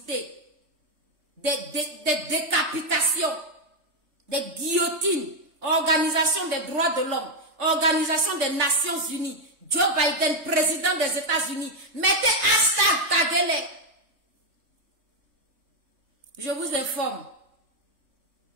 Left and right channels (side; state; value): left; late; 3.3 ms